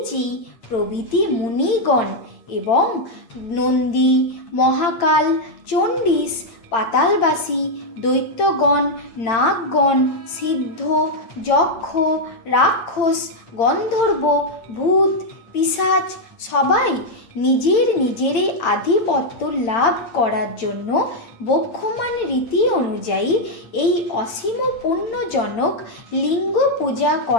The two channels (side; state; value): right; late; 8.8 ms